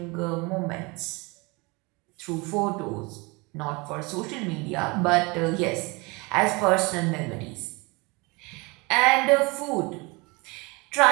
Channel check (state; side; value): quieter; left; 26.7 dB